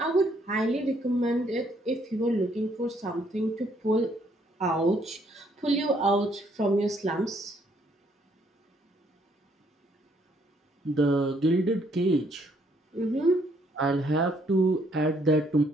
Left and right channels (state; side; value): normal; both; correlation 0.68